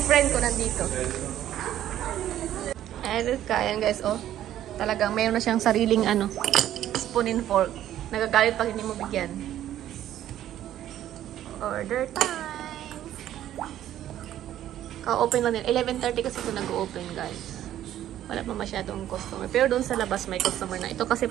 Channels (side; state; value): left; quieter; 12.1 dB